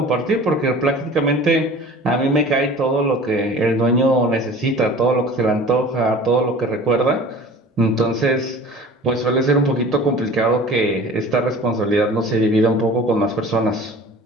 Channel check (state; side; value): normal; both; correlation 0.43